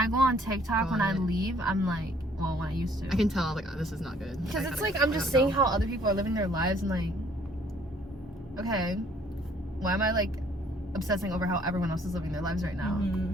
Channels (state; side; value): normal; both; correlation 0.61